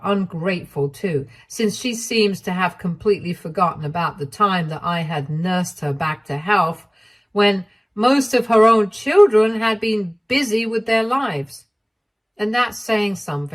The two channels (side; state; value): both; identical; correlation 1.00